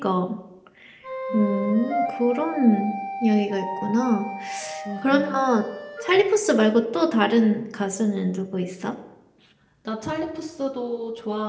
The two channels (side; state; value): both; identical; correlation 1.00